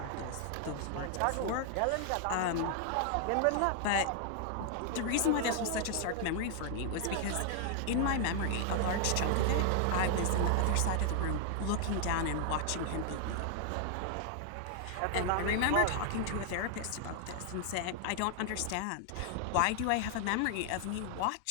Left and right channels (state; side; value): different; both; correlation 0.00